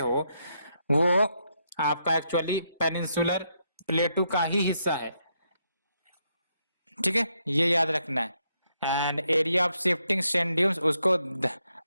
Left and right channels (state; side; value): inverted; both; correlation -0.78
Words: वो आपका एक्चुअली पेनिनसुलर प्लेटू का ही हिस्सा है। ठीक है, ये याद रखना है। And area of shifting sand dunes उसको